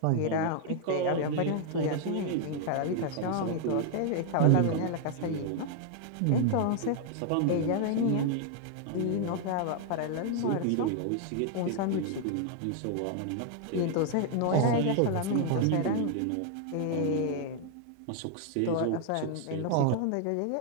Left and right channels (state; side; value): different; both; correlation 0.00